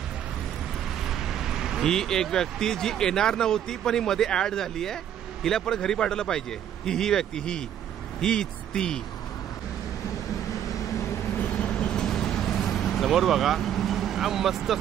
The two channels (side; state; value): left; quieter; 10.1 dB